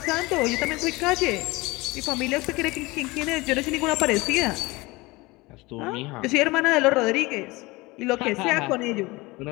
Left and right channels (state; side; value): quieter; right; 22.7 dB